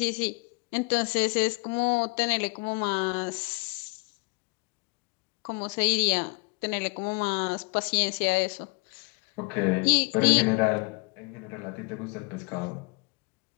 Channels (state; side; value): quieter; right; 31.0 dB